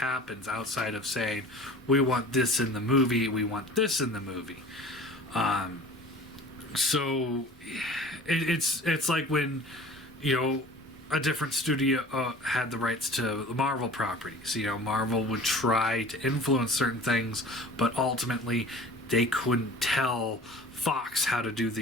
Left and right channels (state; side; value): normal; both; correlation 0.43